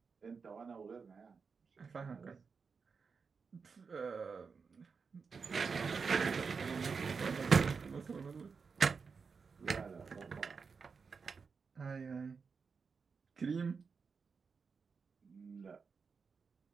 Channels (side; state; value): left; quieter; 5.3 dB